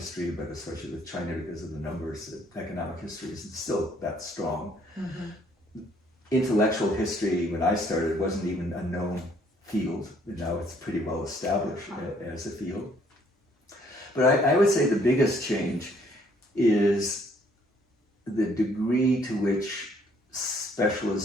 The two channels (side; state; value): both; normal; correlation 0.64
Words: but especially with China because of the numbers, economic history isn't still that strong. Intellectual history, when I started, wasn't even a known field. Now it's pretty well established as a field. But I would say the biggest change is the degree to which